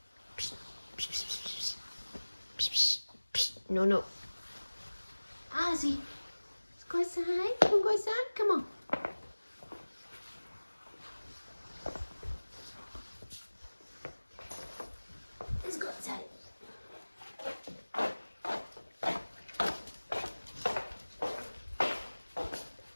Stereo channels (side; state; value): both; inverted; correlation -1.00